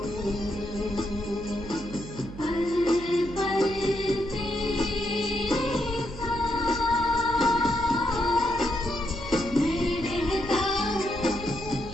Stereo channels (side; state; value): right; noise; hum, 13 dB below the sound